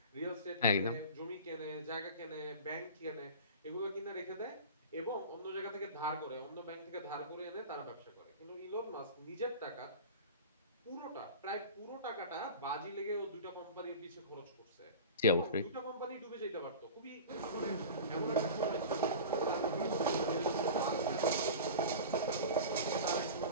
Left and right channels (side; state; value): both; inverted; correlation -0.34